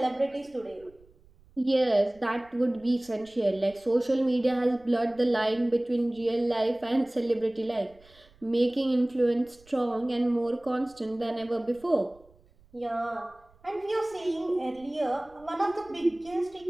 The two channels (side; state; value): right; noise; rumble, 29 dB below the sound